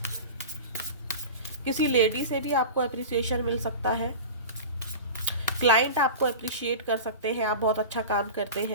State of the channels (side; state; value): both; inverted; correlation -0.30